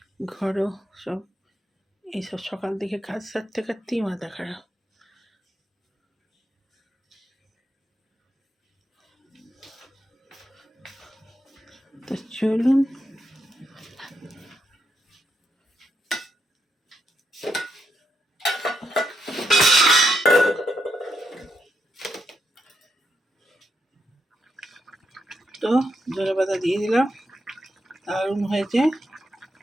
ঘরও সব, এইসব সকাল থেকে কাজ সারতে কাটতেই মাথা খারাপ। তো চলুন, তো ধনে পাতা দিয়ে দিলাম, দারুণ হয়েছে।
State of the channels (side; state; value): both; normal; correlation 0.82